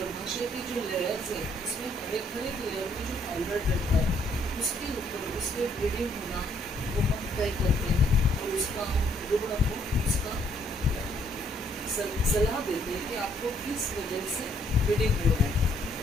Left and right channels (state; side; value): normal; both; correlation 0.67